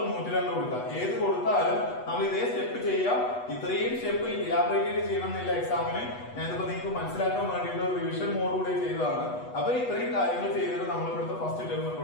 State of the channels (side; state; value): right; late; 8.2 ms